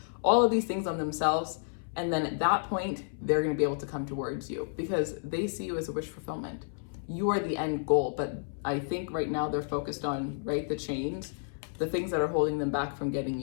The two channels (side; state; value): right; silent; 57 dB below the other